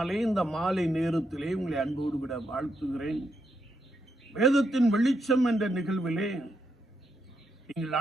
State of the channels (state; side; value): normal; both; correlation 0.81